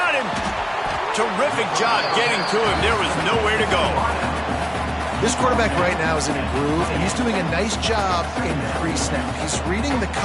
him. Terrific job getting to him. There was nowhere to go. This quarterback right now is in a groove, and he's doing a nice job in pre-snap. He's reading the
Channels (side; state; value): both; identical; correlation 1.00